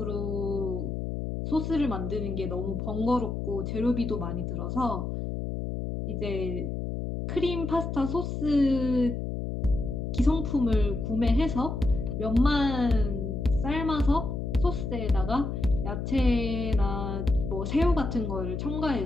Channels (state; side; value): noise; left; hum, 4 dB below the sound